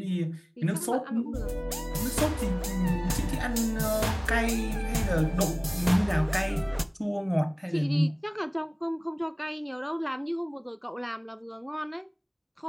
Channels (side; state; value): both; identical; correlation 1.00